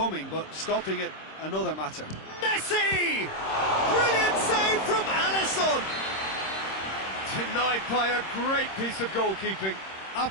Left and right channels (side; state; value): right; late; 26 ms